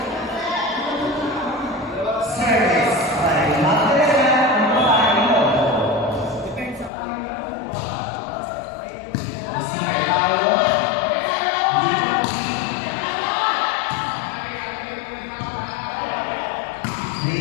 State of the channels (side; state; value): right; drops out; at 6.9 s